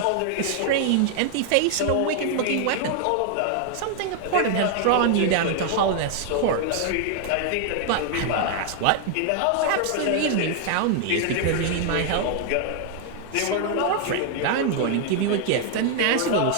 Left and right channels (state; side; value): different; both; correlation 0.00